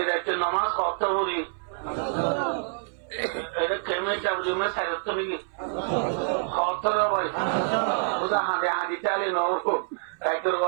একটা নামাজ কত করি এটা কেমন চাবুমে সাইরত নাকি কত ভাই ওটা হাঁটে হাঁটি চালে নবো একদর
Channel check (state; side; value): silent; left; 60 dB below the other